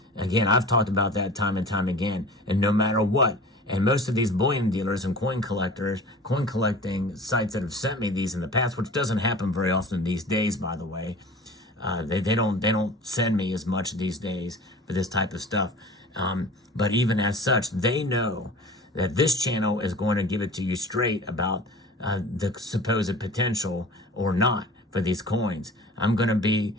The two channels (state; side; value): normal; both; correlation 0.40